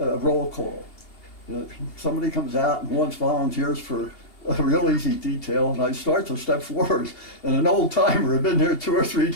call. Somebody comes out and wants volunteers for a real easy detail, and I start to step forward, and an old timer had been there 2 or 3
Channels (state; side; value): late; right; 2.7 ms